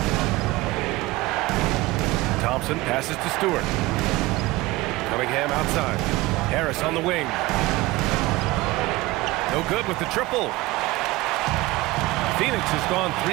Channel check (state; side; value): quieter; left; 20.0 dB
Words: Thompson passes to Stewart. Cunningham outside. Harris on the wing. No good with the triple. Phoenix has gone